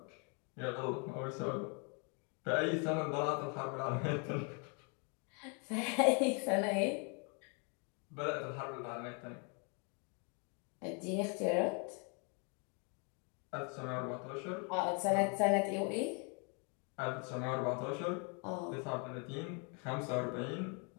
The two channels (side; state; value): right; quieter; 36.0 dB